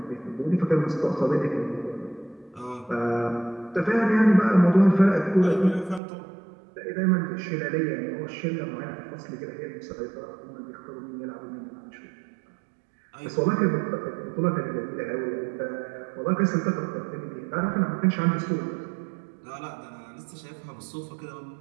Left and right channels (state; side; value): drops out; left; at 6.0 s